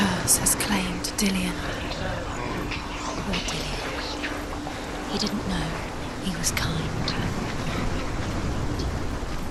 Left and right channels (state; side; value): identical; both; correlation 1.00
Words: has claimed Dillian. Poor Dillian. He didn't know he was kind.